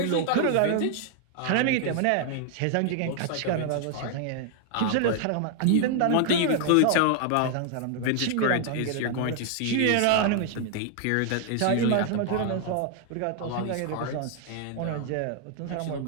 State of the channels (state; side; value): different; both; correlation 0.00